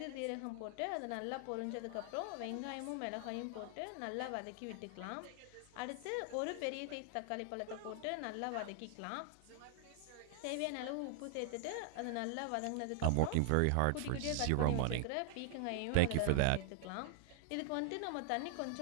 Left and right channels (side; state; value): both; different; correlation 0.00